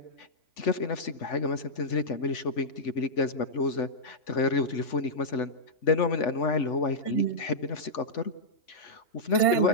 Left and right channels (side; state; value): right; late; 3.5 ms